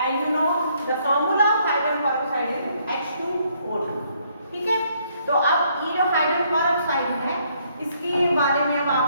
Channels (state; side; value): inverted; both; correlation -0.69